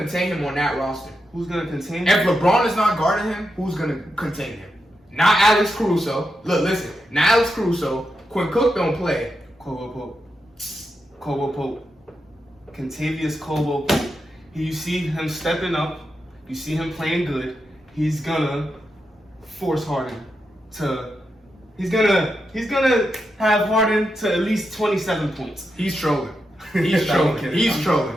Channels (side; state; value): both; normal; correlation 0.86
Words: him on that roster? Who's gonna contain If him? LeBron is not guarding him, who's gonna contain him? Not Alex Caruso. Look, listen. Not Alex Caruso. Quinn Cook don't play. Caldwell Pope. Contavious Caldwell Pope. You see him stepping up. You see him playing good. He's gonna force Harden to. He's gonna have Harden to at least 27 points. He's trolling. No, He's I'm trolling. kidding. He's trolling.